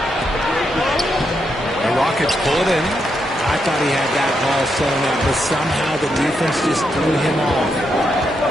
The Rockets pull it in. I thought he had that ball sewn up, but somehow the defense just threw him off.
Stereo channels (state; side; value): normal; both; correlation 0.81